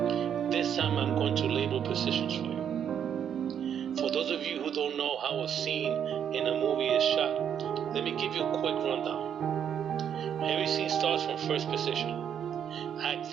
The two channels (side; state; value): left; quieter; 8.7 dB